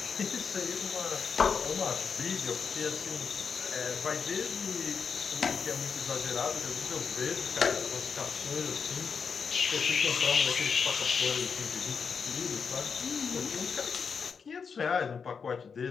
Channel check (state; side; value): quieter; right; 5.9 dB